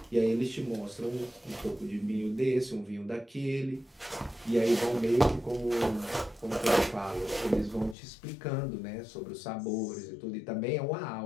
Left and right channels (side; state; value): right; drops out; at 8.0 s